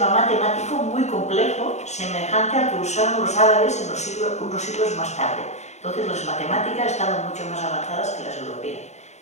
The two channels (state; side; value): late; right; 0.33 ms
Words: matemático muy complejo, semejante al que usaron los árabes unos siglos más tarde. Entonces las matemáticas estaban mucho más avanzadas que las europeas.